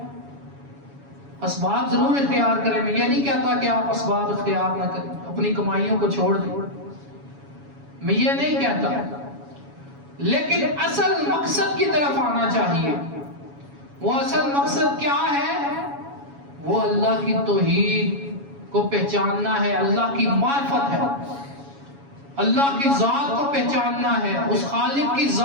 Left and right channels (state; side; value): late; left; 7.2 ms